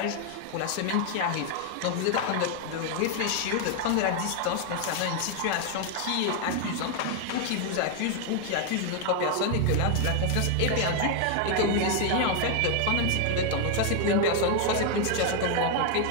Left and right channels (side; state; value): both; different; correlation 0.01